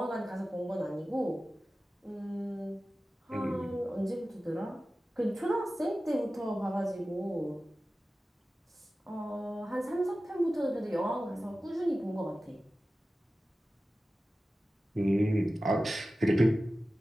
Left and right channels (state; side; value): normal; both; correlation 0.95